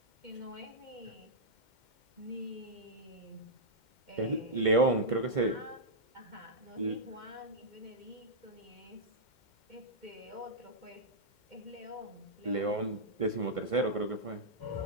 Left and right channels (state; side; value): late; right; 2.1 ms